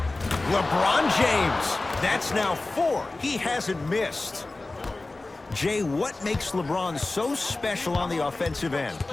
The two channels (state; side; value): quieter; right; 3.1 dB